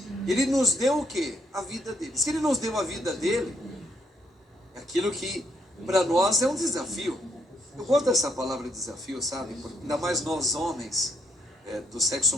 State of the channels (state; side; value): normal; both; correlation 0.72